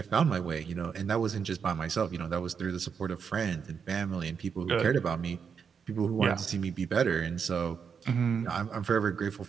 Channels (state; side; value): quieter; left; 6.5 dB